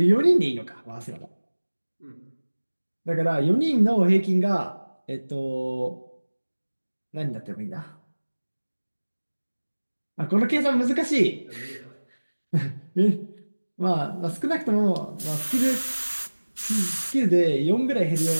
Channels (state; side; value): inverted; both; correlation -1.00